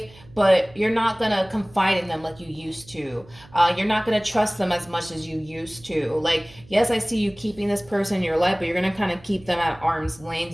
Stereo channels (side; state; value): right; noise; hum, 24 dB below the sound